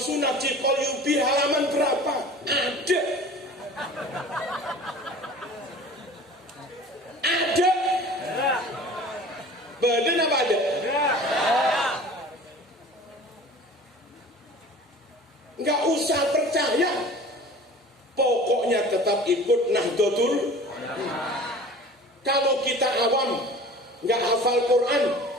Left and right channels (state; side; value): normal; both; correlation 0.42